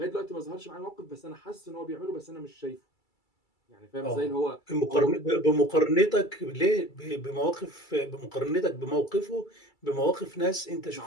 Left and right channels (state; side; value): late; right; 2.3 ms